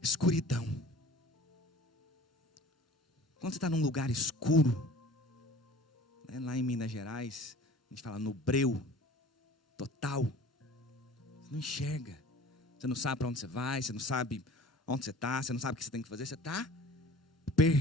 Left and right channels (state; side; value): normal; both; correlation 0.45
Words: escuridão. Quando você está num lugar escuro, né, lá em Minas Gerais, a gente fala no breu total. Você não enxerga. Você não sabe para onde você vai, você não sabe onde você está, você não sabe o que você tem que fazer, você está